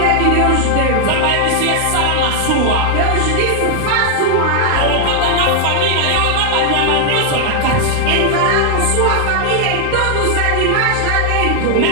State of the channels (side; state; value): both; different; correlation 0.00